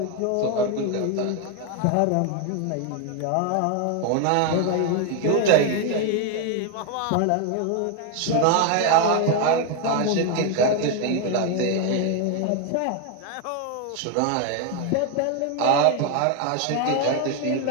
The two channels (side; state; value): both; different; correlation 0.01